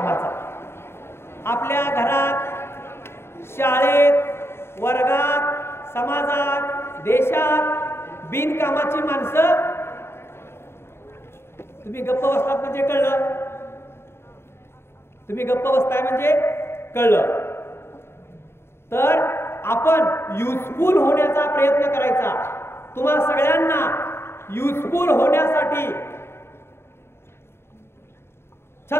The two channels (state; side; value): late; right; 0.12 ms